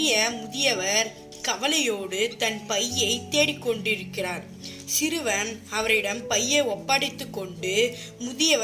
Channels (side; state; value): both; identical; correlation 1.00